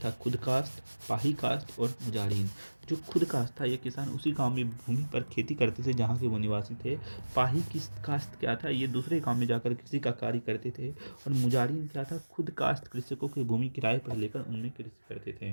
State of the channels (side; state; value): both; inverted; correlation -1.00